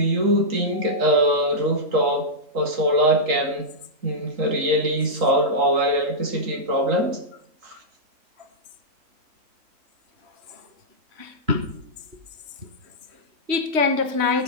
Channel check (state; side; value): late; left; 3.1 ms